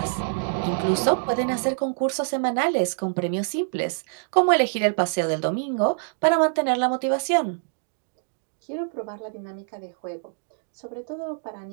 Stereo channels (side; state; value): left; silent; digital silence